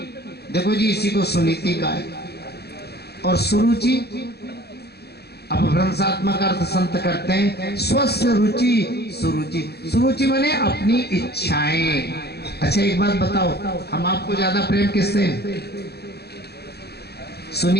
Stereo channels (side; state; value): right; late; 0.47 ms